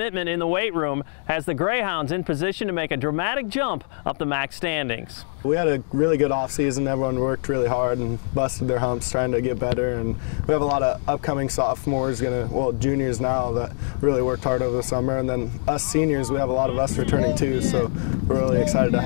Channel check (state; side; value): silent; right; 63 dB below the other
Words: in the weight room has the Grayhounds in position to make a dramatic jump up the MAC standings. We had a really good off-season. Everyone worked really hard and busted their humps trying to get better, and we have a lot of upcoming sophomores, juniors now, that really worked hard over the summer, and then us seniors, we have a lot of us returning too, so we're really excited to